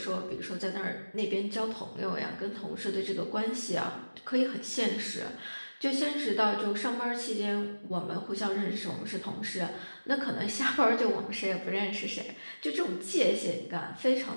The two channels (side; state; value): both; inverted; correlation -1.00